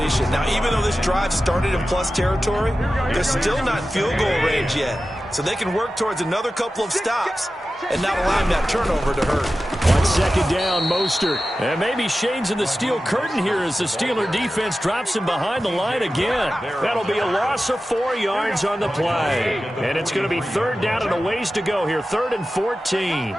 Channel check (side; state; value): both; normal; correlation 0.94